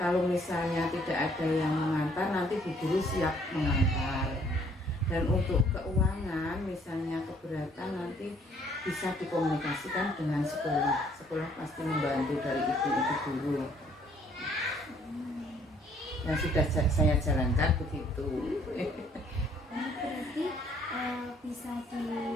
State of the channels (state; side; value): normal; both; correlation 0.63